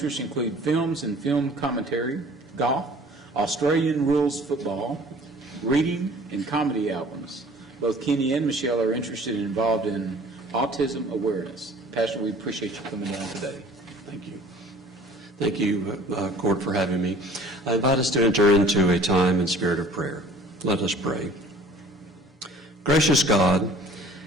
include films and film commentary, golf, Australian rules football, reading, and comedy albums. Both Kenny and Michelle are interested and involved in autism awareness. Pastor, we appreciate you coming down today. Thank you. Thank you, Court, for having me. I invite us to enter into a time and spirit of prayer. Let us pray. Gracious God,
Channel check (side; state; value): both; normal; correlation 0.50